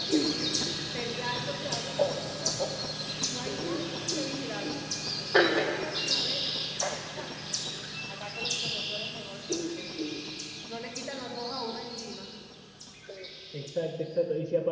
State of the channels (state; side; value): identical; both; correlation 1.00